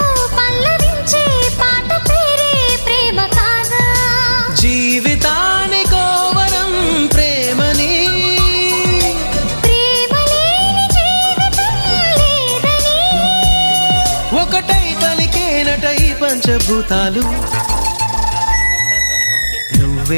పల్లవించే పాట పేరే ప్రేమ కాదా? జీవితానికో వరం ప్రేమని, ప్రేమ లేని జీవితం లేదని. ఒకటై పలికేనట ఈ పంచభూతాలు.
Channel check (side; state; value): both; inverted; correlation -1.00